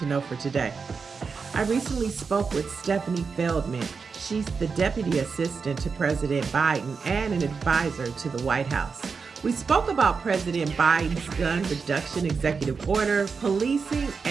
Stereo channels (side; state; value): left; quieter; 5.2 dB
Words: know for today. I recently spoke with Stefanie Feldman. She's the Deputy Assistant to President Biden and an advisor to the White House. We spoke about President Biden's gun reduction executive order, policing,